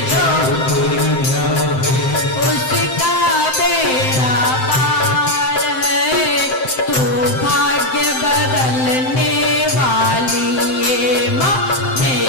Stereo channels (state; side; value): late; right; 7.7 ms